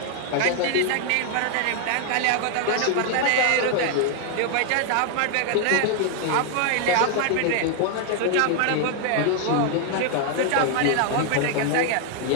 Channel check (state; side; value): different; both; correlation 0.00